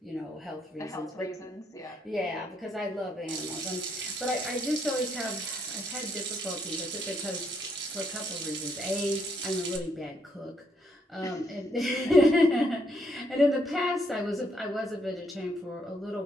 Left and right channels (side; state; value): both; normal; correlation 0.73